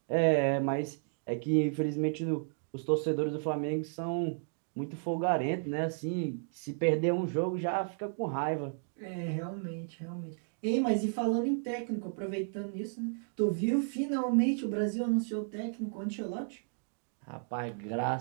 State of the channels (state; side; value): silent; left; digital silence